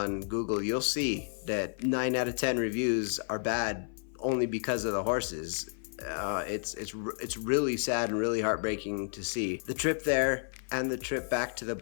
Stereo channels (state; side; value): silent; right; 57 dB below the other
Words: Google, you'll see that 9 out of 10 reviews are bad only because of the horses. It's really sad and really heartbreaking to see. The trip there and the trip back to the